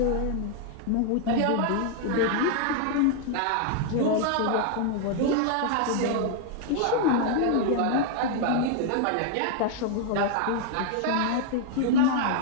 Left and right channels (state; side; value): different; both; correlation 0.00